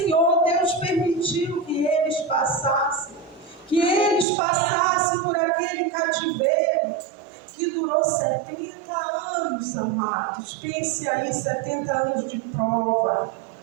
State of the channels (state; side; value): drops out; left; at 4.2 s